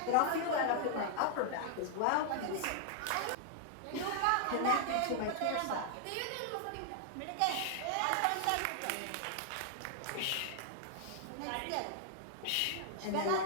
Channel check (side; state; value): both; different; correlation 0.00